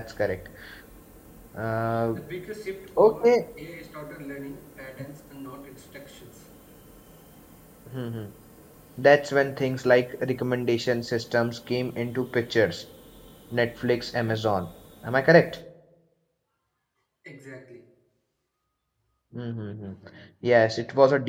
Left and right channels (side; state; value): both; identical; correlation 1.00